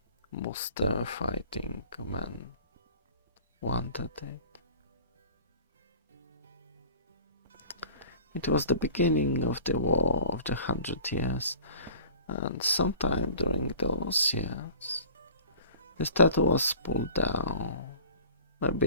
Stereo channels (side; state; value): both; inverted; correlation -0.44